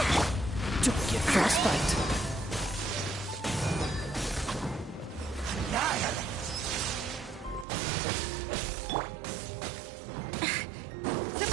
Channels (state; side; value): drops out; left; at 7.7 s